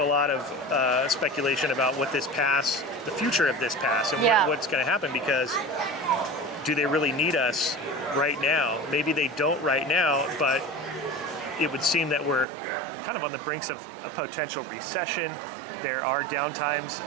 lot of speculation about what this pass, the future of this pass, and what's going to happen, because do they really need us right now? Maybe they don't right now, but it would seem that we're kind of on the brinks of a potential recession. There are downtimes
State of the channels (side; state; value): left; drops out; at 12.5 s